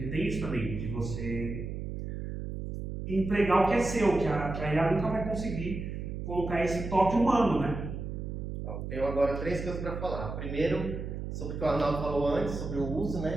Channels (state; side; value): noise; right; hum, 5 dB below the sound